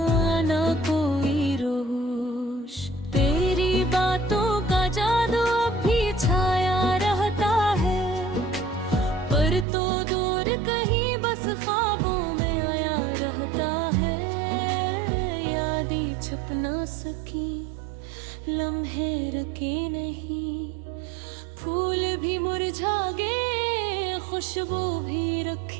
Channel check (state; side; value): drops out; left; at 9.7 s